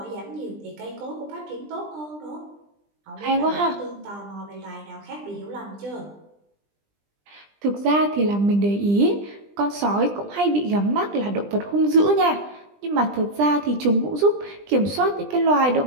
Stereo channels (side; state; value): left; late; 20 ms